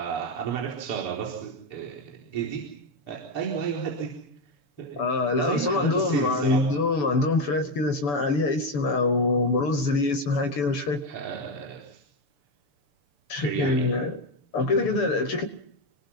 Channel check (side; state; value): right; late; 6.9 ms